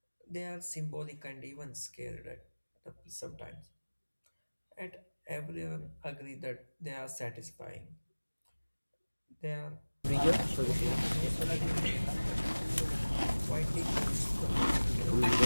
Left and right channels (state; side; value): inverted; both; correlation -1.00